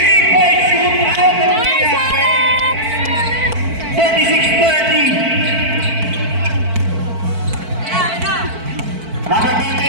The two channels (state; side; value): late; left; 4.5 ms